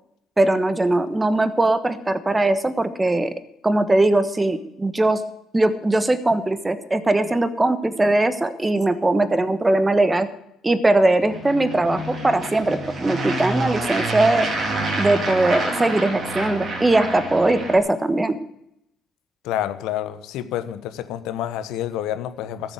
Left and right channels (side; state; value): both; normal; correlation 0.91